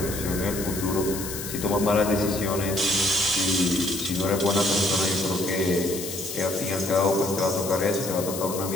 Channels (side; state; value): left; noise; hiss, 8 dB below the sound